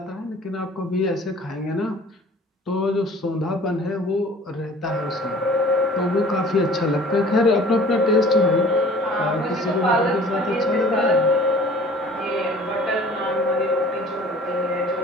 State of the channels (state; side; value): normal; both; correlation 0.48